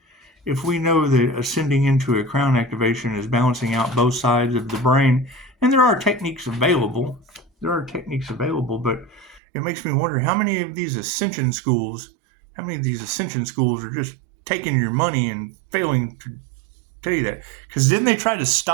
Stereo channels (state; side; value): drops out; left; at 9.4 s